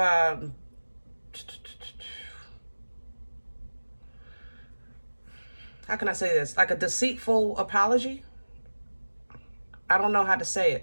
can I say this? Like a deceitful apology. I don't know how to say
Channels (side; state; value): both; inverted; correlation -1.00